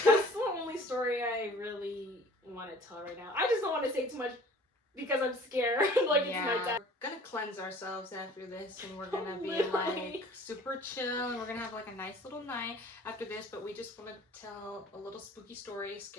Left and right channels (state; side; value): normal; both; correlation 0.49